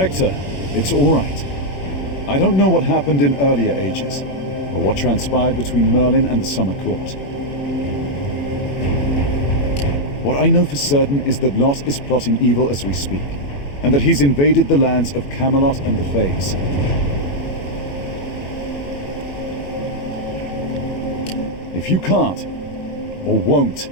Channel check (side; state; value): right; late; 21 ms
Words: it's all right. I don't know what happened in earlier ages, or what transpired between Merlin and the Summer Court. What I know for certain is that Lot is plotting evil as we speak, and that he's invaded the lands of Camelot and the Fays. If you can't, or won't